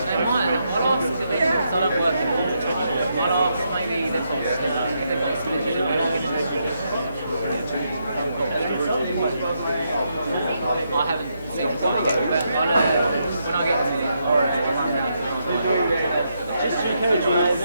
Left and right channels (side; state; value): both; inverted; correlation -0.79